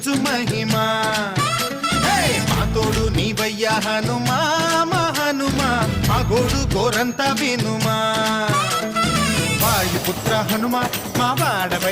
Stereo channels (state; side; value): identical; both; correlation 1.00